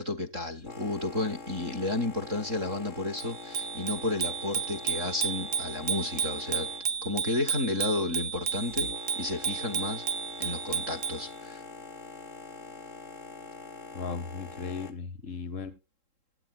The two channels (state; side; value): late; left; 3.7 ms